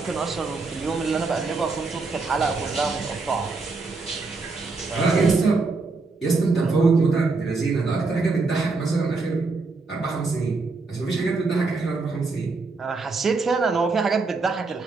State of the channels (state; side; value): quieter; left; 3.9 dB